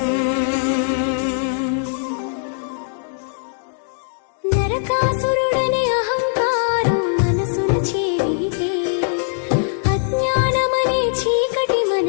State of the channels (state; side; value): silent; right; 65 dB below the other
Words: నరకాసురుడని అహంకారం మనసున చేరితే అజ్ఞానమనే చీకటి